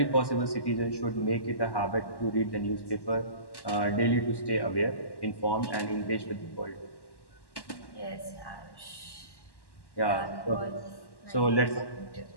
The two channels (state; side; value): late; right; 1.1 ms